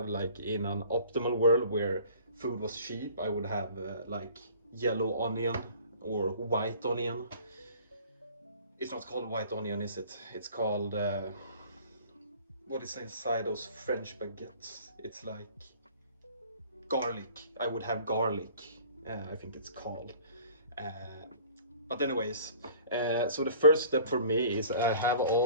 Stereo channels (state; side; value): inverted; both; correlation -0.50